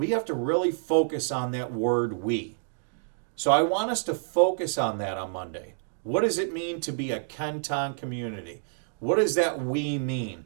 have to really focus on that word "we." So I want us to focus on that on Monday. What does it mean to be a Kenton community? What does that "we" mean?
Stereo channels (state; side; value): silent; left; digital silence